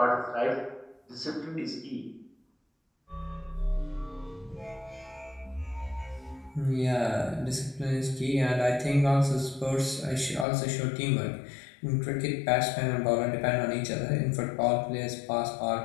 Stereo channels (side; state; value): right; drops out; at 10.5 s